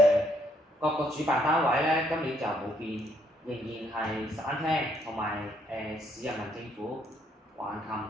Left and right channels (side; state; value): both; normal; correlation 0.70